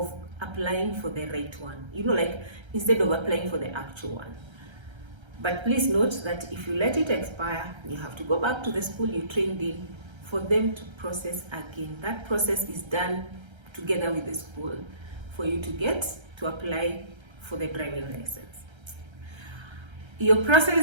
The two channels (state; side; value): late; left; 1.3 ms